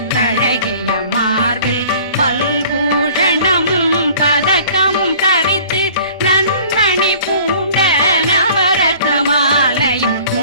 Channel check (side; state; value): both; inverted; correlation -0.49